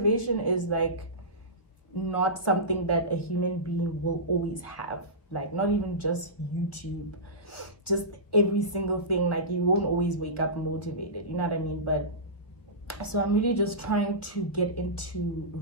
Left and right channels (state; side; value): late; right; 1.1 ms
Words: is like not something that a human being will always have. Like not even just YouTube, just every single thing. Like you won't always wake up motivated, you know what I mean? But so I'm really just trying to get into